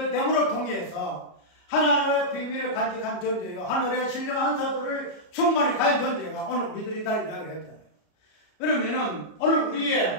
됨으로 통해서 하나님의 비밀을 간직한 존재요. 하늘의 신령한 사도를 충만히 가진 존재가 오늘 우리들이 다 이야기를 했잖아요. 그러면은 오늘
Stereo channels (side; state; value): right; late; 33 ms